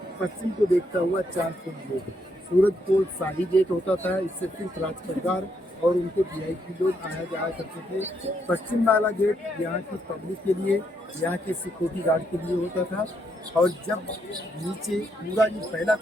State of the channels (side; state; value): both; normal; correlation 0.76